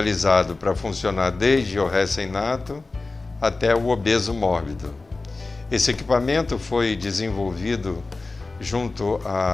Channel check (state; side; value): quieter; right; 3.5 dB